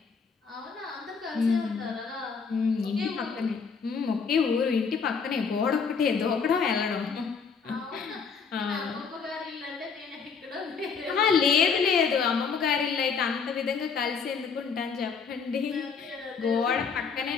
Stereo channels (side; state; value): right; quieter; 5.7 dB